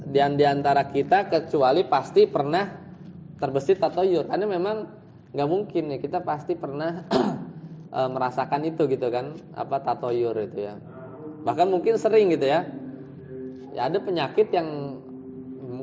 di antara kita kecuali pasti pernah terbesit tatoyur. Karena memang nggak mungkin ya, kita pasti pernah merasakan itu gitu kan, apa tatoyur itu ya. Bahkan mungkin sering gitu ya. Ya ada penyakit yang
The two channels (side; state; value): both; identical; correlation 1.00